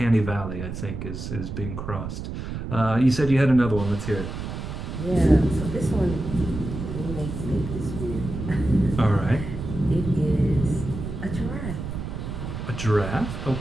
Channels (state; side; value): noise; right; rumble, 7 dB below the sound